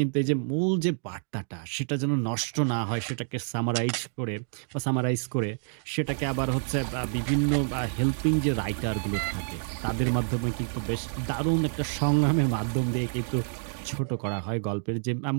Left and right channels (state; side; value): silent; left; 59 dB below the other